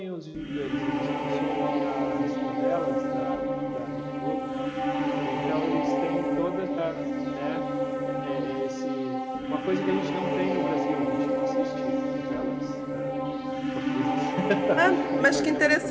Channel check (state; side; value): identical; both; correlation 1.00